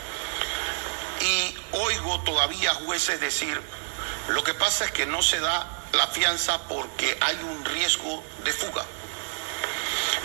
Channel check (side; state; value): left; silent; 60 dB below the other